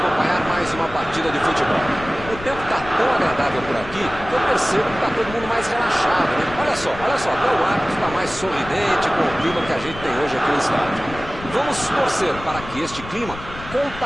mais uma partida de futebol. O tempo está tão agradável por aqui que eu percebo que está todo mundo mais relaxado, né? Olha só, até o árbitro está mais sorridente com o clima que a gente tem hoje aqui no estádio. Vamos torcer para que este clima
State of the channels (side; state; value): left; noise; rumble, 14 dB below the sound